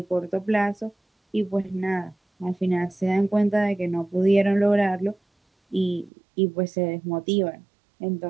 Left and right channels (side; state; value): left; drops out; at 6.1 s